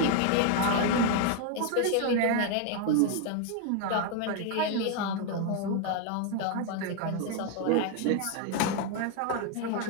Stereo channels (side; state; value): both; different; correlation 0.01